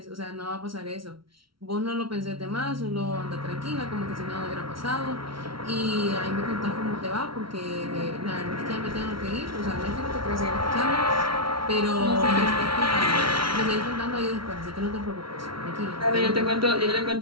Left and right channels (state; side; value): late; left; 0.74 ms